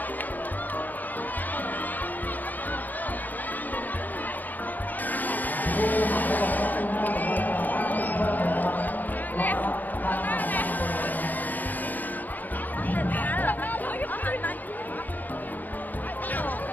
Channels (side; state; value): right; late; 0.084 ms